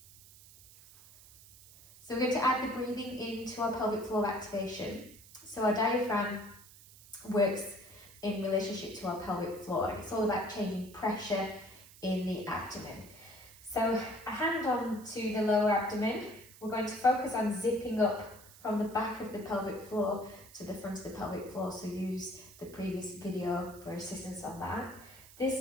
So we're going to add the breathing into our pelvic floor activation. So our diaphragm works in relationship to our pelvic floor. It's all about changing pressure in the abdomen. So a hand on to the lower abdomen. We're going to focus on zipping up from the back of the pelvic floor to the front of the pelvic floor. So use the previous video for assistance on that.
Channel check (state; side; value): noise; right; hiss, 20 dB below the sound